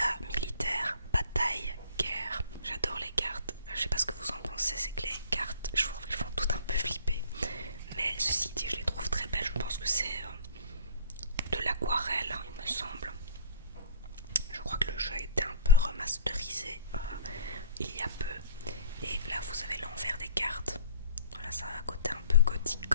militaire, bataille, guerre. J'adore les cartes. Je sais pas ce que vous en pensez, c'est que les cartes, je trouve qu'elles font tout un peu flipper. Mais ceci dit, je les trouve très belles. Je pense que c'est de l'aquarelle, hein, il me semble. Je crois que le jeu a été un peu remasterisé il y a peu. Et là, vous avez l'envers des cartes. Voilà, ça a un côté un peu gothique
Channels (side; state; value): both; inverted; correlation -0.47